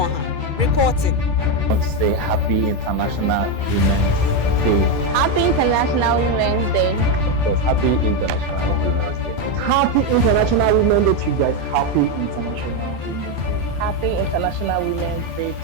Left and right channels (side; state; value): left; late; 2.3 ms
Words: reporting. I want to say Happy International Women's Day. Happy International Women's Day. Of course, Happy International Women's Day. Happy International Women's Day to you guys. Happy International Women's Day. Happy International Women's Day.